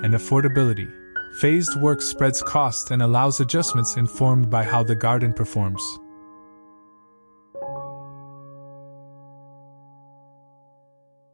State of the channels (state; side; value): inverted; both; correlation -1.00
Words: affordability. Phased work spreads cost and allows adjustments informed by how the garden performs.